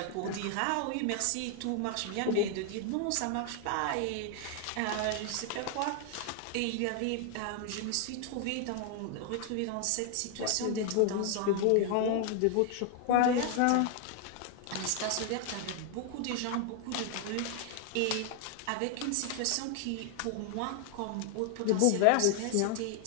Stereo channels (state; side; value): different; both; correlation 0.00